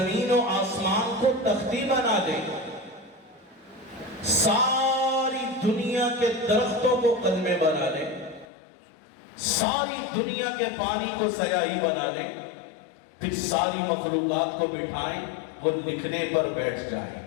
و آسمان کو تختی بنا دیں، ساری دنیا کے درختوں کو قلمیں بنا لیں، ساری دنیا کے پانی کو سیاہی بنا لیں، پھر ساری مخلوقات کو بٹھائیں، وہ لکھنے پر بیٹھ جائیں۔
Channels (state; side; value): drops out; right; at 8.5 s